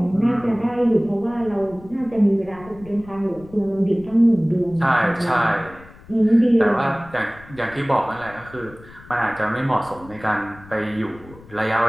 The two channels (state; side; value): noise; left; rumble, 21 dB below the sound